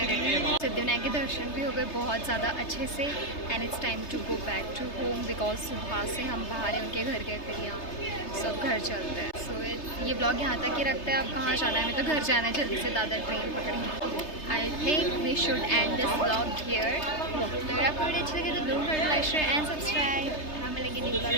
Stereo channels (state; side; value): late; right; 3.3 ms